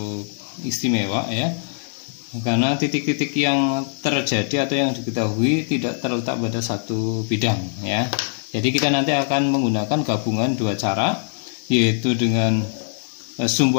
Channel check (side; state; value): right; silent; digital silence